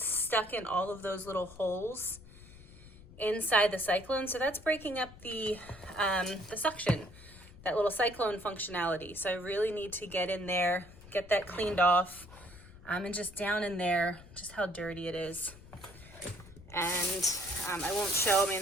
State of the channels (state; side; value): noise; left; rumble, 19 dB below the sound